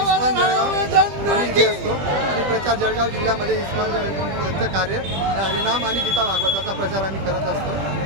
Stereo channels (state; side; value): late; left; 20 ms